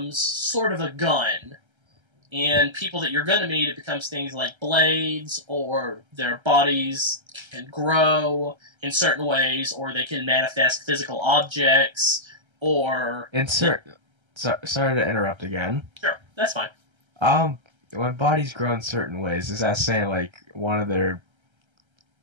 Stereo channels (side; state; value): left; late; 1.3 ms